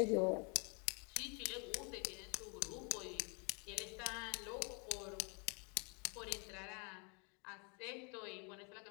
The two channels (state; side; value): quieter; right; 34.6 dB